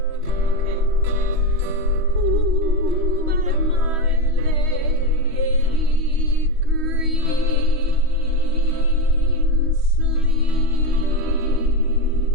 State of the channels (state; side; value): late; left; 3.1 ms